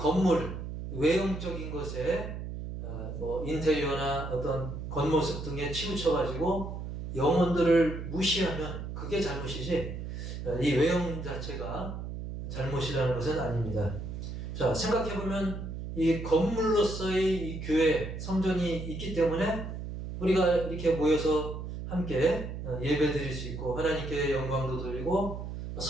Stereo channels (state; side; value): noise; right; hum, 7 dB below the sound